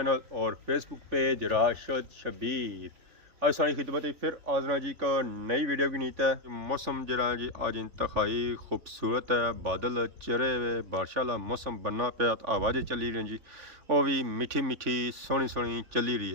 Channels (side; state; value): left; late; 3.4 ms